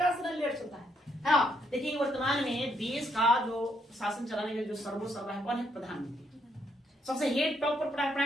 से लेयर चलता है ना। देखिए वर्तमान में देश का जो शासन चलाने का जो सर्वोसर्वा है कौन है? प्रधानमंत्री। सबसे हेड टॉप पर प्राइम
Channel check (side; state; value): both; normal; correlation 0.74